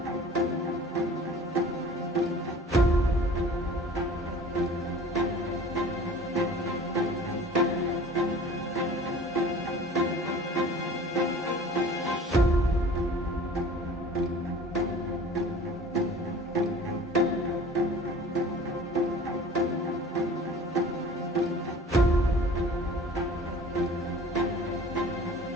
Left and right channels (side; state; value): both; normal; correlation 0.45